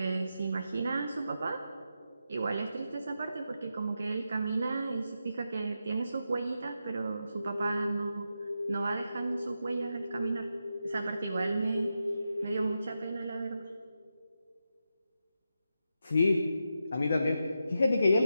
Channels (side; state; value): both; inverted; correlation -0.87